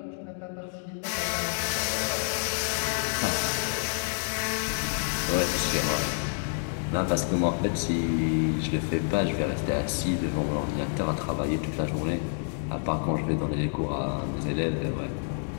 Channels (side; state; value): right; silent; 59 dB below the other